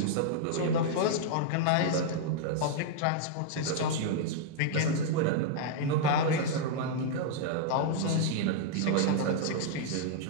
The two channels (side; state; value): both; different; correlation -0.01